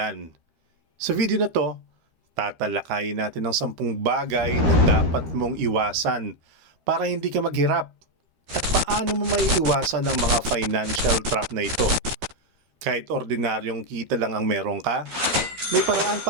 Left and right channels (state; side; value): late; left; 13 ms